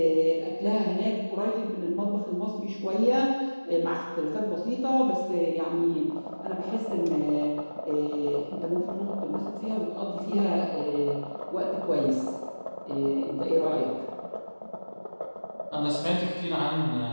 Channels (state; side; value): inverted; both; correlation -1.00